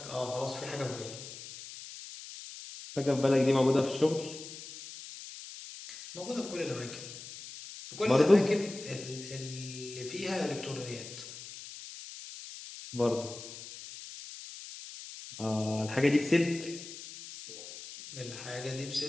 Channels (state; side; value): noise; left; hiss, 13 dB below the sound